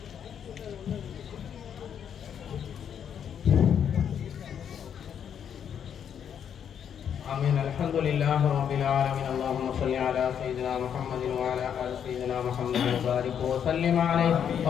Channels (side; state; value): right; quieter; 8.4 dB